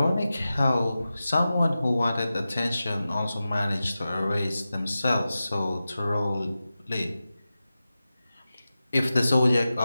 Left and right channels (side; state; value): both; inverted; correlation -0.94